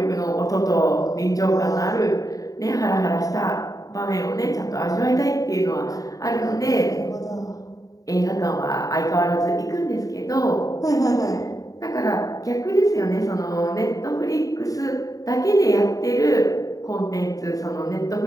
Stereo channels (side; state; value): right; late; 0.17 ms